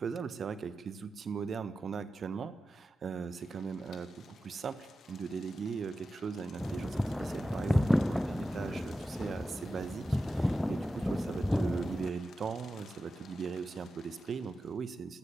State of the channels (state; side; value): normal; both; correlation 0.92